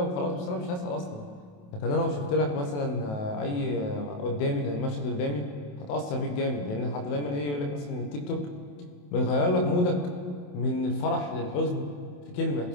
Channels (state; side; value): late; right; 28 ms